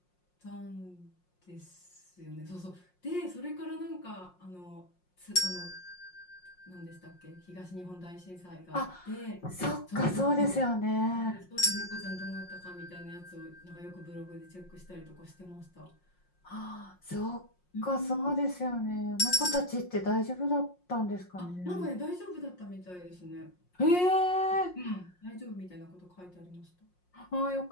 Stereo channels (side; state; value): right; late; 5.6 ms